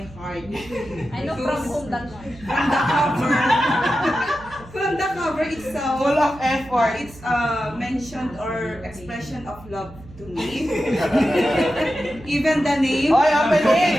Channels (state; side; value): noise; right; hum, 19 dB below the sound